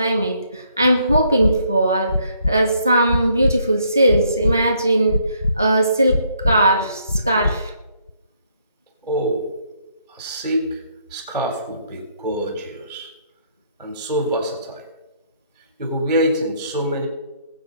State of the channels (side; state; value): both; inverted; correlation -0.69